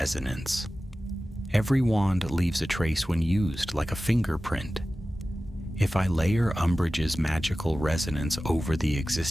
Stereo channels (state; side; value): normal; both; correlation 0.96